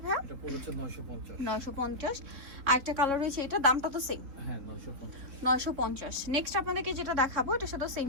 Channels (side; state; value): left; late; 4.1 ms